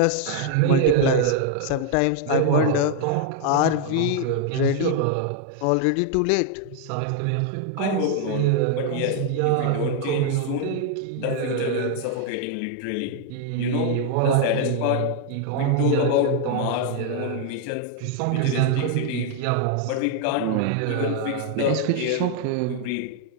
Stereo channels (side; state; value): both; different; correlation 0.00